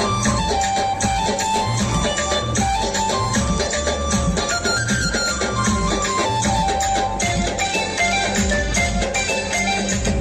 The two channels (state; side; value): identical; both; correlation 1.00